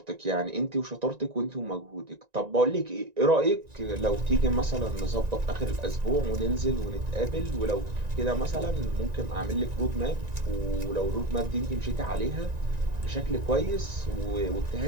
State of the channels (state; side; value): late; left; 1.9 ms